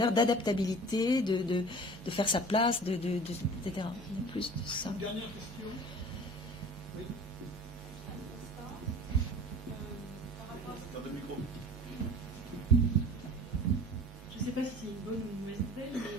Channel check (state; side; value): normal; both; correlation 0.42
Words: d'adaptabilité, de faire sa place, etc. Il y a plus de ça. Une dernière question. Oui. Je ne sais pas si c'est une bonne ou une mauvaise nouvelle,